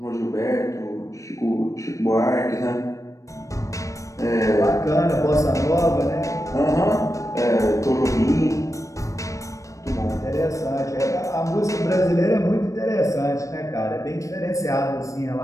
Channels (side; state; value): right; late; 0.15 ms